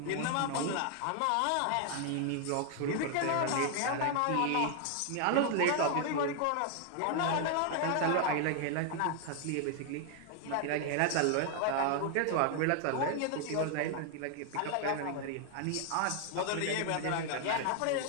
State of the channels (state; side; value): different; both; correlation 0.00